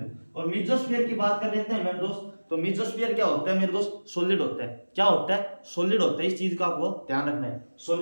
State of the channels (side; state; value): both; inverted; correlation -1.00